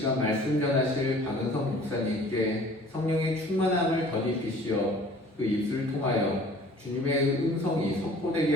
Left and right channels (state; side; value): normal; both; correlation 0.50